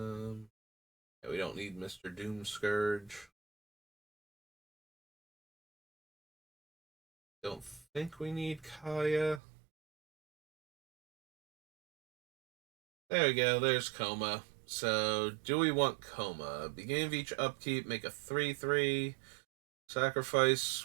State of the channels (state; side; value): drops out; left; at 9.4 s